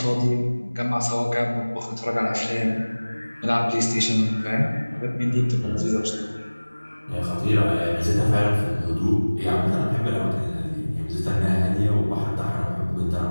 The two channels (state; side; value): inverted; both; correlation -1.00